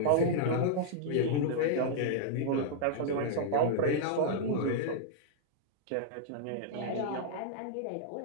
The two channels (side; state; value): both; different; correlation -0.01